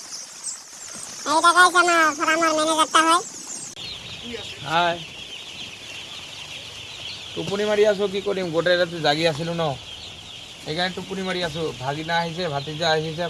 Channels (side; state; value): both; identical; correlation 1.00